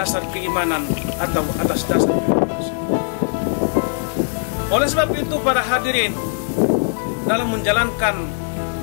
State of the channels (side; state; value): right; silent; digital silence